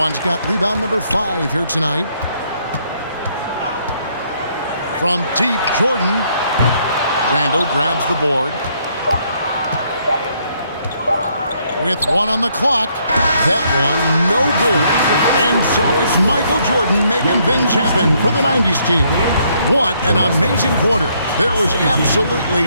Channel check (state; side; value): inverted; both; correlation -0.70